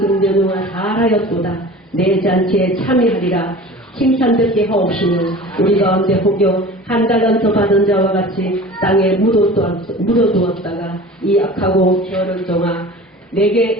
잘하였도다 내 잔치에 참여하리라 칭찬 듣게 하옵시며 우리 가운데 혹여 1달란트 받은 자와 같이 땅에 묻어두었다가 이 악하고 게으른 종아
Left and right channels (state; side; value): normal; both; correlation 0.39